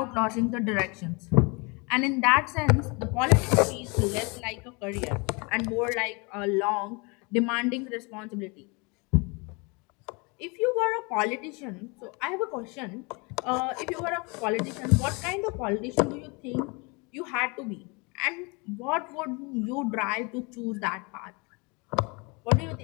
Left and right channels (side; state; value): right; quieter; 29.5 dB